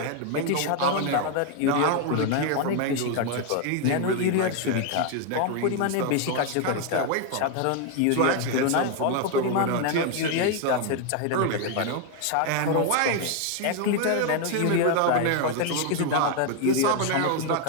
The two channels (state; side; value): different; both; correlation 0.01